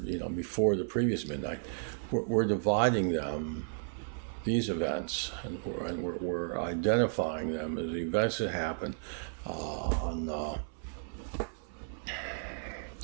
before the previous midnight. We're dividing them, these events, and we're identifying them as the events that happened on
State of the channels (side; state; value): left; silent; 55 dB below the other